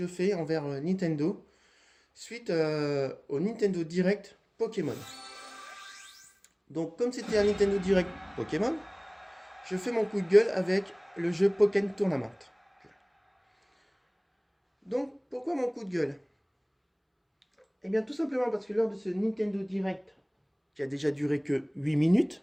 fais envers Nintendo, suite au Nintendo Direct Pokémon. Donc comme c'était un Nintendo Direct Pokémon, je fais mon coup de gueule avec le jeu Pokémon Tournament. Donc pourquoi mon coup de gueule? Eh bien tout simplement parce que lors de ce Nintendo Direct, qui a déjà duré que 8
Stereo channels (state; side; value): identical; both; correlation 1.00